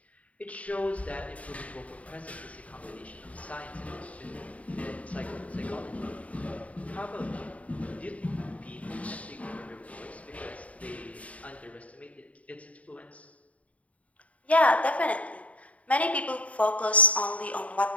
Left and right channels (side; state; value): right; late; 0.067 ms